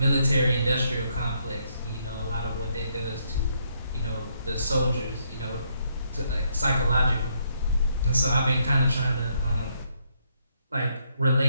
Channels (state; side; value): inverted; both; correlation -0.74